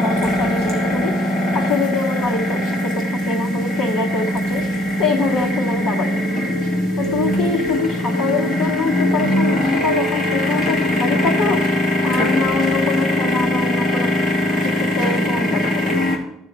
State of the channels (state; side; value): normal; both; correlation 0.60